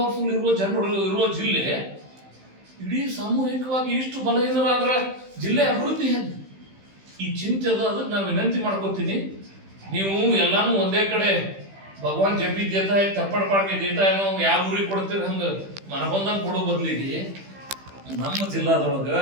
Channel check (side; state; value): left; late; 15 ms